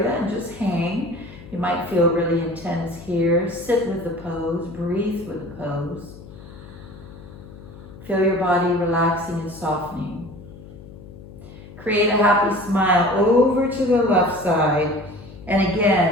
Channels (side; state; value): left; noise; hum, 17 dB below the sound